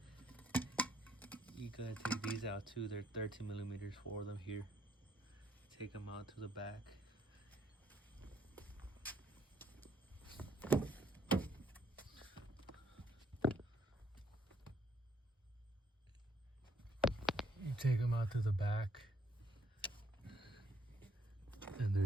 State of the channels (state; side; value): normal; both; correlation 0.68